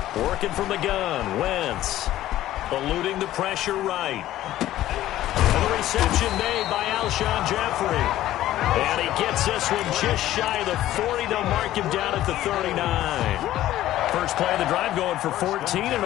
Working from the gun, Wentz eluding the pressure right. And the reception made by Alshon Jeffrey. And he gets this one just shy of the 40. They'll mark him down at the 39. First play of the drive going for 14 and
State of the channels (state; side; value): quieter; right; 14.0 dB